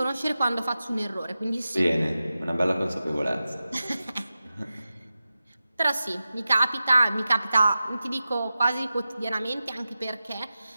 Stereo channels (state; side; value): inverted; both; correlation -0.93